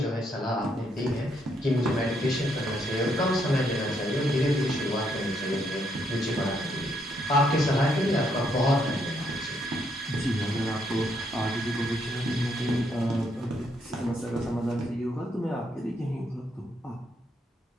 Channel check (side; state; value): both; normal; correlation 0.74